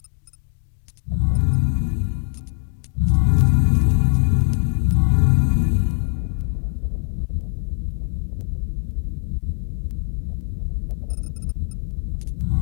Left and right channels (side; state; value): right; silent; 55 dB below the other